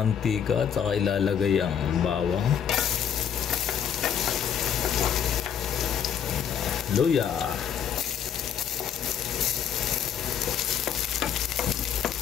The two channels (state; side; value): quieter; right; 8.5 dB